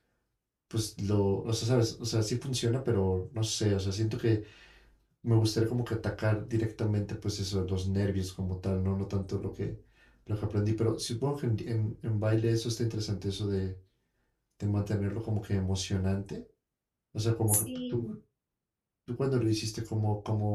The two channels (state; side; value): identical; both; correlation 1.00